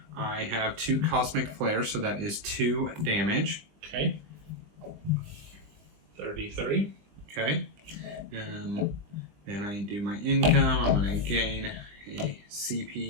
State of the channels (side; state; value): left; late; 20 ms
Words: I have 2 Cosmic Flares, so that is 2 damage. Okay. 33. Okay. Then I do my income. I'm going to gain a